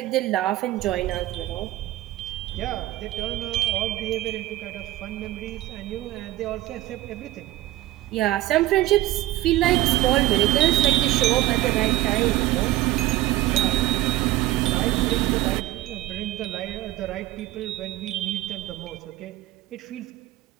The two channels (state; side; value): quieter; left; 16.2 dB